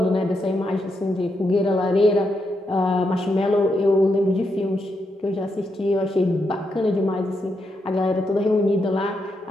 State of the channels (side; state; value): both; normal; correlation 0.82